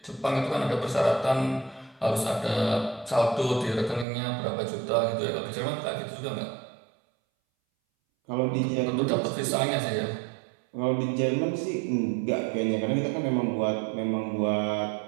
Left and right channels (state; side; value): drops out; left; at 4.0 s